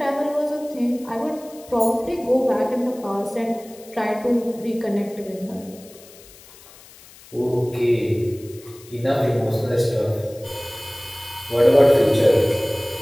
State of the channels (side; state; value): left; noise; hiss, 22 dB below the sound